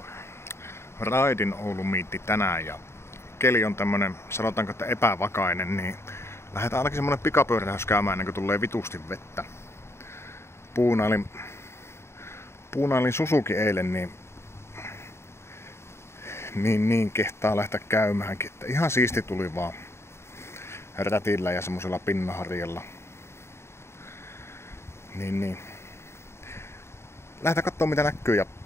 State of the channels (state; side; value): late; right; 0.13 ms